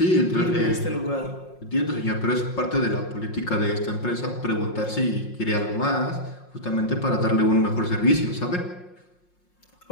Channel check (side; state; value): right; late; 5.6 ms